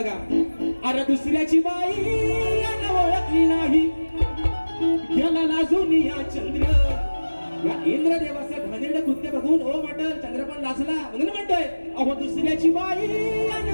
अरे दुसऱ्याची बाई ओळखली नाही गेला लाजून या चंद्र या इंद्रदेवाचं घाणेरडं कृत्य बघून ओ म्हटल चंद्र पण लाजला म्हणून म्हणतोय अहो दुसऱ्याची बाई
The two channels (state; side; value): inverted; both; correlation -1.00